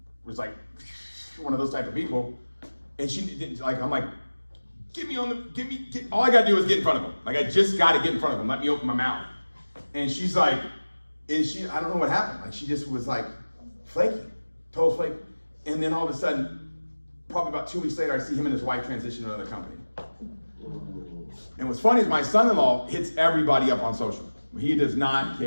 like one of those type of people. And she didn't, like, I'm like, all I got to do is get in front of them. Like, I just got to get in front of them. Let me open my mouth. And she's like, I don't know what happened. Like, she just was like flaky, total flake. And then all of a sudden, probably about 2 weeks later, I see him and his wife transition to another company. And what's funny is my son-in-law hits everybody up on social. He does not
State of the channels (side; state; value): both; inverted; correlation -1.00